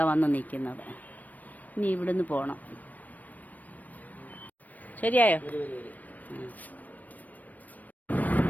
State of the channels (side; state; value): right; late; 0.079 ms